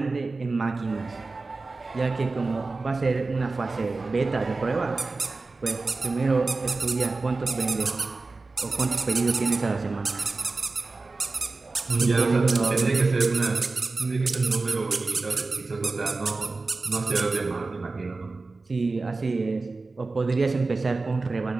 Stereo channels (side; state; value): left; quieter; 3.7 dB